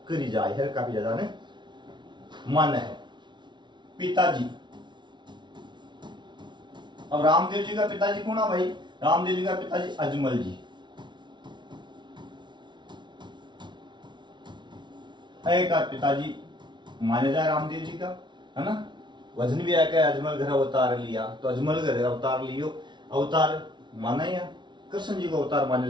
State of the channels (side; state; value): left; late; 0.22 ms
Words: करी जाए है, काफी ज्यादा ने माना है। पिताजी, अब रामदेव जी का पिताजी कौन है भाई? रामदेव जी का पिताजी अजमल जी। एक पिताजी माने जाए रामदेव जी का, है ना। वजन भी आया अजमल घर अवतार लिया, तो अजमल घर अवतार लियो, अवतार माना या कृष्ण जी को अवतार माने